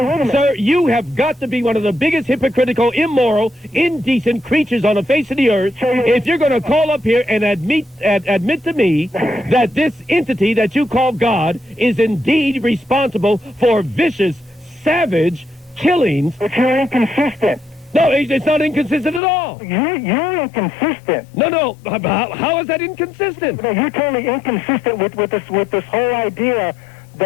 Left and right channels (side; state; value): right; drops out; at 19.2 s